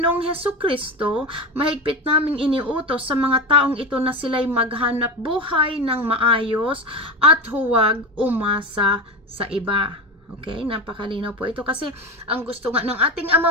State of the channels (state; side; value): normal; both; correlation 0.20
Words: Hesukristo, mahigpit naming iniutos sa mga taong ito na sila'y maghanap buhay ng maayos at huwag umasa sa iba. Okay, napakalinaw po ito kasi ang gusto nga ng ating